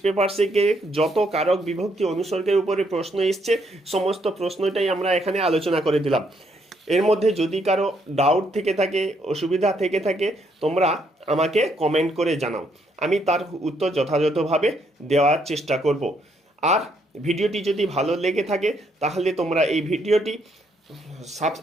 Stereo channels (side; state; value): both; normal; correlation 0.72